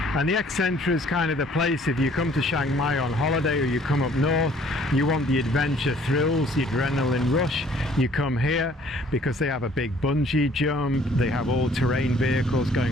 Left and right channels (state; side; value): normal; both; correlation 0.58